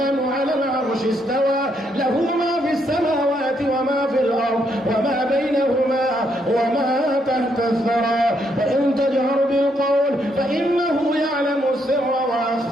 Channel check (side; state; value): both; normal; correlation 0.75